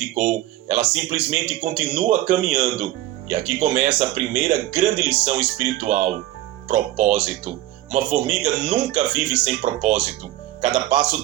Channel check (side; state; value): left; quieter; 15.2 dB